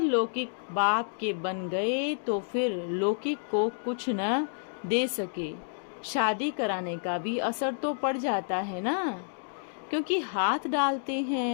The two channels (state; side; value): silent; right; digital silence